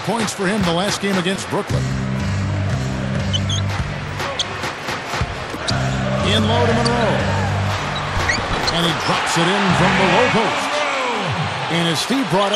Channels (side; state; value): both; identical; correlation 1.00